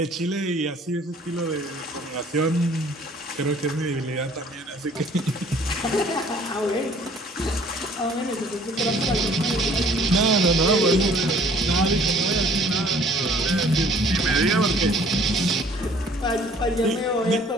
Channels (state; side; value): normal; both; correlation 0.56